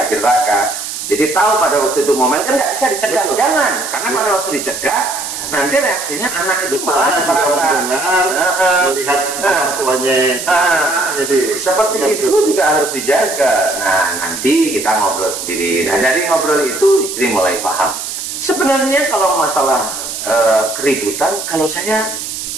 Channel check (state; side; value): noise; right; hiss, 6 dB below the sound